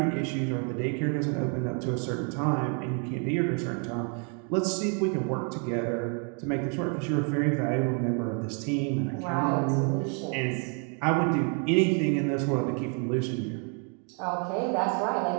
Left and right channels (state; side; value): quieter; left; 39.2 dB